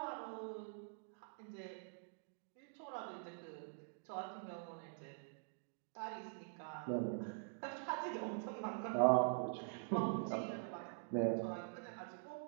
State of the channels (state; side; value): silent; left; digital silence